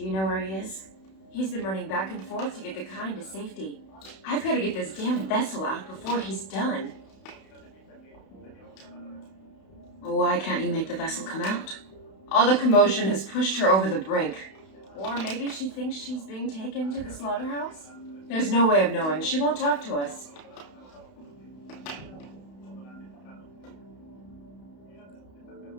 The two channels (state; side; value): late; right; 31 ms